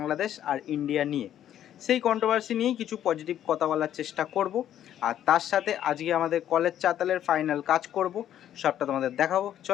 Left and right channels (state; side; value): quieter; right; 11.0 dB